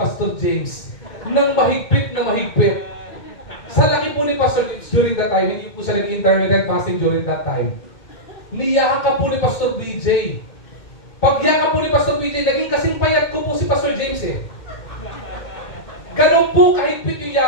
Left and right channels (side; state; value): right; late; 2.1 ms